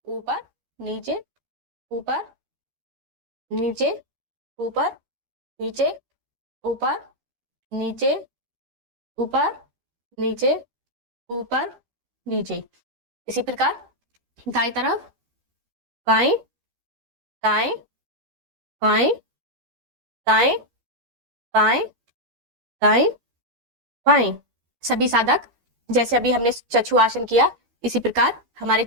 ऊपर, नीचे, ऊपर, नीचे, ऊपर, नीचे, ऊपर, नीचे, ऊपर, नीचे, ऊपर, नीचे। इसी प्रकार दाएं तरफ, बाएं दाएं बाएं दाएं बाएं दाएं बाएं। सभी साधक जैसे अभी हमने चक्षु आसन किया, इसी प्रकार हमारे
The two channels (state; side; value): late; left; 12 ms